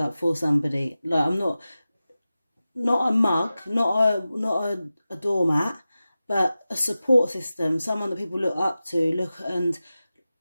for somebody. Like, I'm not a mug, not a doormat, but a support system, someone that people look up to,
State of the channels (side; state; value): both; inverted; correlation -0.95